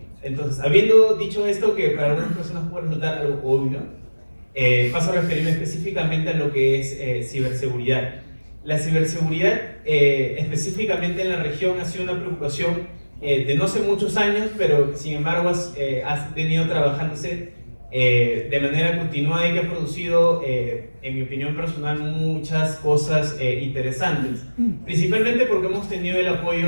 Entonces, habiendo dicho esto, que para algunas personas puede resultar algo obvio, paso a referirme específicamente a lo que es ciberseguridad. La ciberseguridad, específicamente en la región, ha sido una preocupación de no hace muchos años, pero sin embargo ha venido trabajándose de manera continuada y que ha producido, en mi opinión personal, muchas cosas interesantes. Principalmente porque hemos tenido el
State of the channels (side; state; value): both; inverted; correlation -1.00